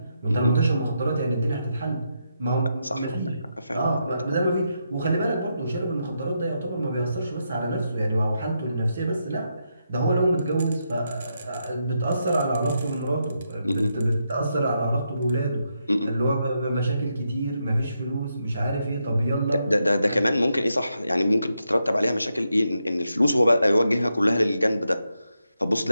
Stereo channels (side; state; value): both; inverted; correlation -0.83